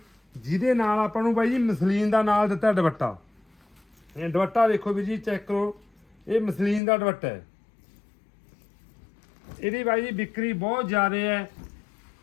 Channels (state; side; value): drops out; right; at 6.8 s